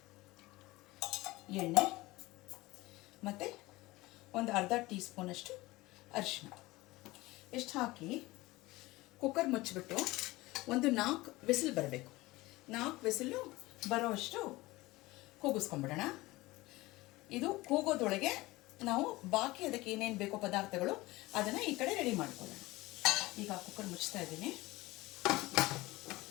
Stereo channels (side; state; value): right; quieter; 20.1 dB